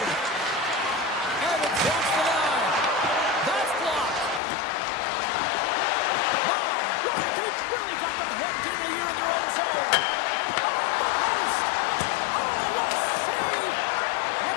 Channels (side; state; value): right; drops out; at 4.4 s